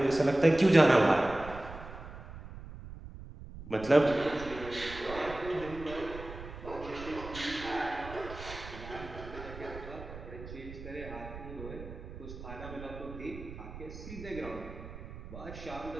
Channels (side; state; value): right; noise; rumble, 12 dB below the sound